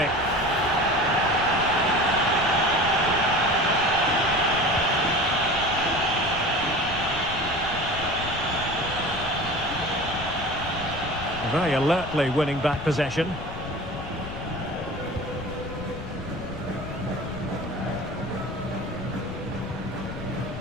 Very alertly winning back possession.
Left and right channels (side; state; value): left; noise; rumble, 13 dB below the sound